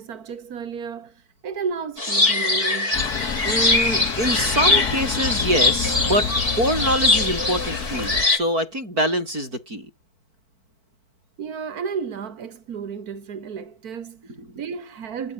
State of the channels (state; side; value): late; left; 4.5 ms